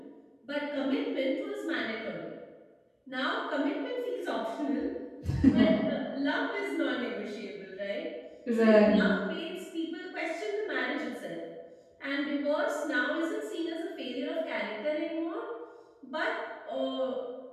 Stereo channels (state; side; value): identical; both; correlation 1.00